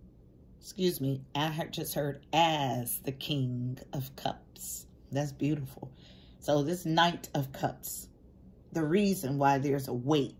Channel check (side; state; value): both; identical; correlation 1.00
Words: excuse me, I just heard as the King of Cups. That's beautiful. So this Knight of Cups, the reason why there's a